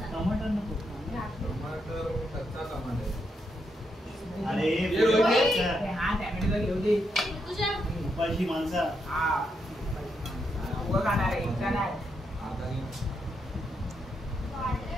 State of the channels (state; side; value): normal; both; correlation 0.81